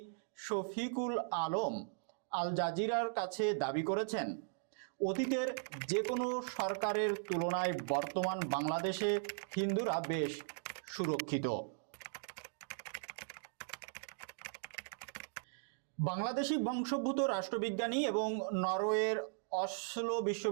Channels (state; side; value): silent; left; digital silence